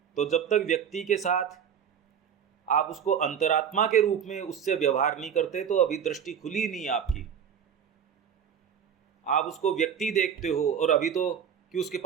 तो जब तक व्यक्ति के साथ आप उसको अंतरात्मा के रूप में उससे व्यवहार नहीं करते तो अभी दृष्टि खुली नहीं आपकी। आप उसको व्यक्ति देखते हो और अभी तो कि उसके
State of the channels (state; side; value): quieter; left; 8.1 dB